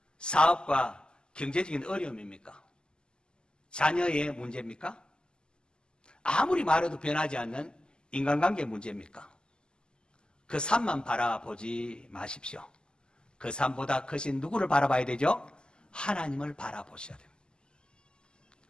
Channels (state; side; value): late; right; 0.047 ms